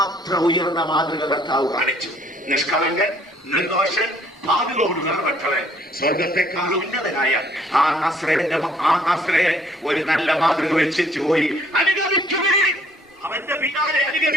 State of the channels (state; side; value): normal; both; correlation 0.62